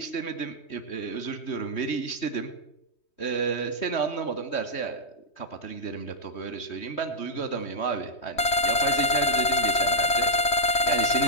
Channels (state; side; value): late; right; 3.2 ms